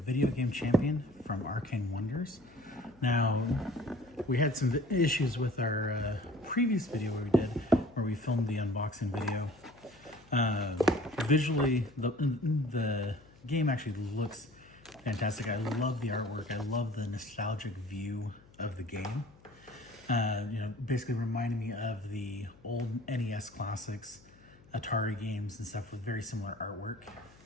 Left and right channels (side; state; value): left; noise; hum, 26 dB below the sound